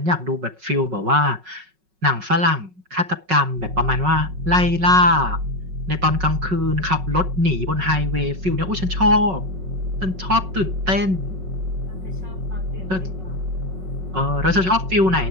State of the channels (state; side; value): late; left; 5.4 ms